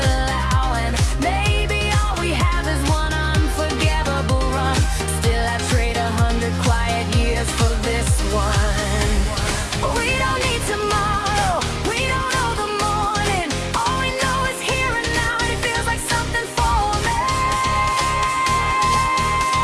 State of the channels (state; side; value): identical; both; correlation 1.00